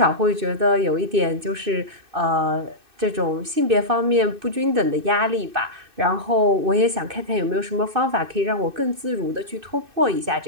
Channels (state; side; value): late; left; 2.6 ms